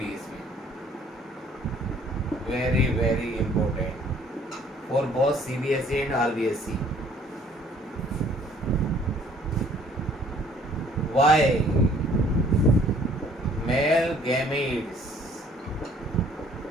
इसमें, very very important for both CBSE and RBSE. Why male gametes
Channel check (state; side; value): normal; both; correlation 0.58